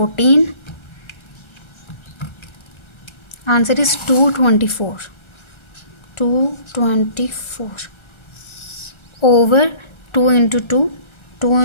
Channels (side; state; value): right; late; 1.3 ms